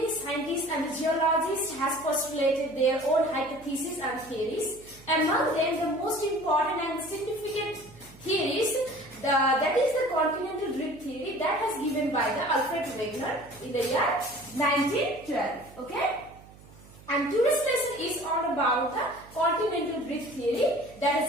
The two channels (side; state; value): right; noise; hum, 22 dB below the sound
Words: scientists and geologists have postulated their own hypotheses and theories. Among them, the most important and significant theories, that is the Continental Drift theory that was given by the Alfred Wegener in the year 1912. Okay? And today's lesson is all about the Continental Drift theory that